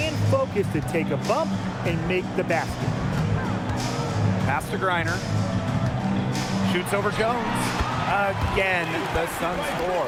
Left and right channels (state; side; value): identical; both; correlation 1.00